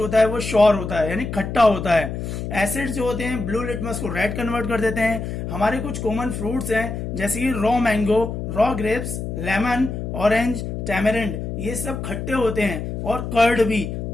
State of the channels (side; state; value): left; noise; hum, 5 dB below the sound